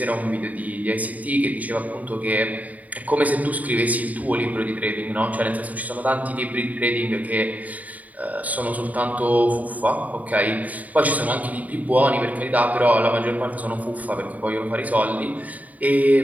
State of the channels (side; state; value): left; late; 0.073 ms